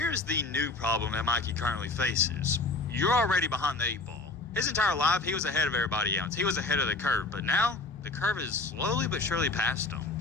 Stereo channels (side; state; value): right; quieter; 3.4 dB